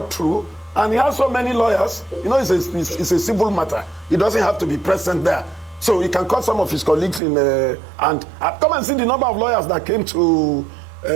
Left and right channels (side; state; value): left; drops out; at 7.2 s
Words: through. And he has so many lawyers. It's a civil matter. He doesn't have to be present there. So he can call some of his colleagues in and come and see the number of lawyers that came to